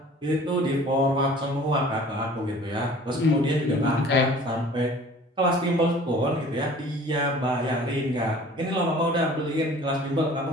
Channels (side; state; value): both; normal; correlation 0.48